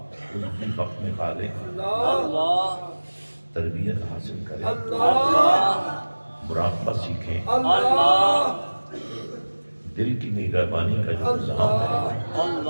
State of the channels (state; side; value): inverted; both; correlation -1.00